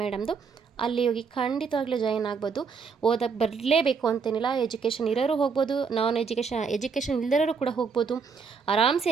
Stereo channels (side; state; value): left; quieter; 5.5 dB